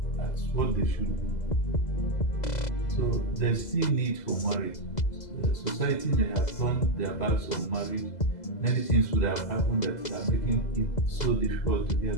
That's what they should do. So there's still need for marriage. Society may have turned their backs on marriage. Many things would have happened that are making it so difficult to get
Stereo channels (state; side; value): late; right; 2.0 ms